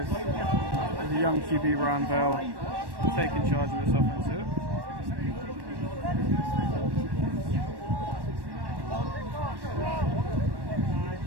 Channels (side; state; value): left; late; 1.1 ms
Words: the young QB Ryan Bell taking charge of this offense here.